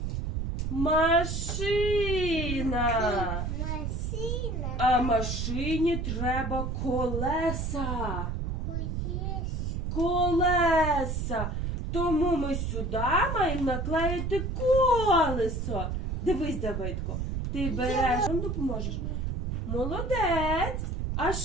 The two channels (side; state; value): right; noise; rumble, 2 dB below the sound